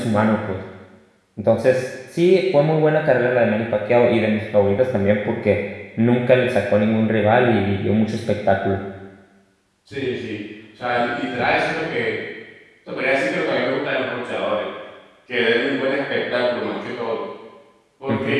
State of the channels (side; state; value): both; identical; correlation 1.00